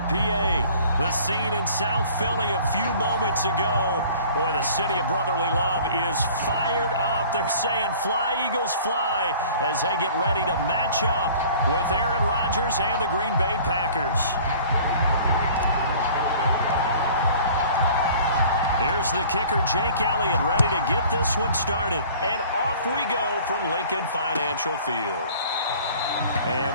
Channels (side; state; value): both; inverted; correlation -0.49